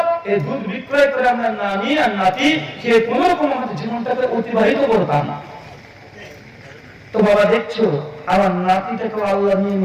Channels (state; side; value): identical; both; correlation 1.00